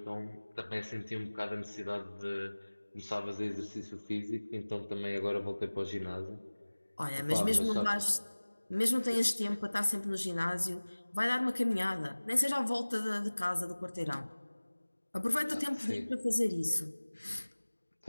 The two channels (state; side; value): inverted; both; correlation -1.00